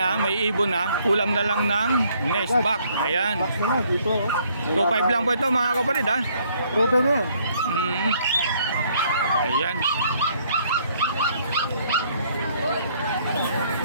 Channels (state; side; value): inverted; both; correlation -0.66